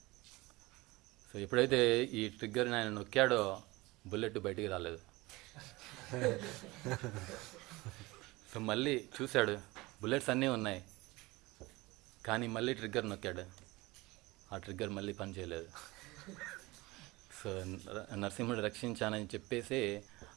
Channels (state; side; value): quieter; left; 21.5 dB